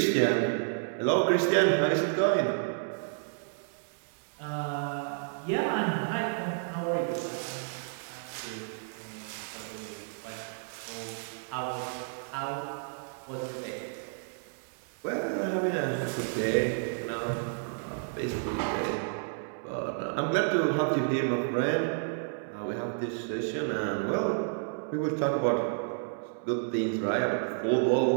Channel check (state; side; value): silent; left; 57 dB below the other